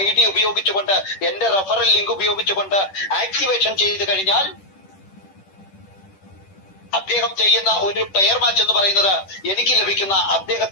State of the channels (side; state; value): right; late; 10 ms